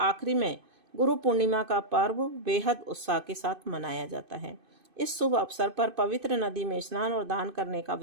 में गुरु पूर्णिमा का पर्व बेहद उत्साह के साथ मनाया जाता है। इस शुभ अवसर पर पवित्र नदी में स्नान और दान करने का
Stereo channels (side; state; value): left; late; 2.5 ms